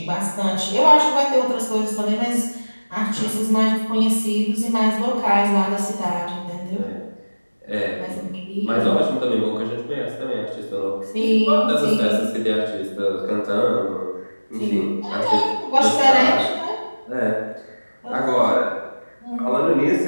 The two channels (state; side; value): inverted; both; correlation -1.00